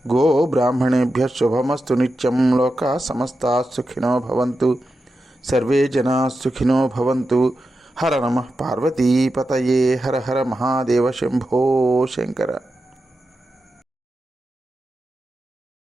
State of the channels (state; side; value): normal; both; correlation 0.90